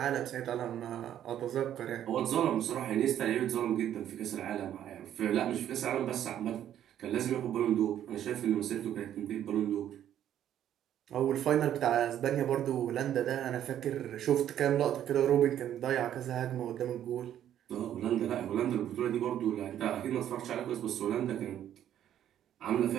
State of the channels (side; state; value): left; quieter; 10.8 dB